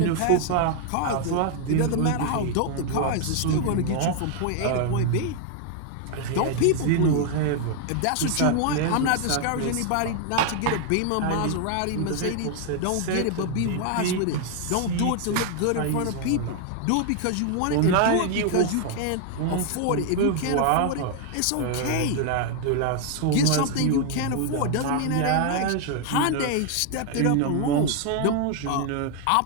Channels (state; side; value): different; both; correlation 0.00